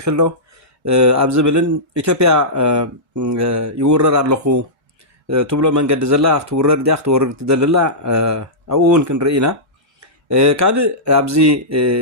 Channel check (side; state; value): both; normal; correlation -0.15